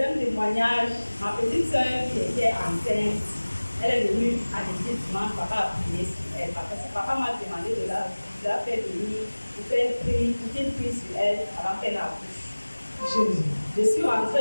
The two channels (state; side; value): inverted; both; correlation -1.00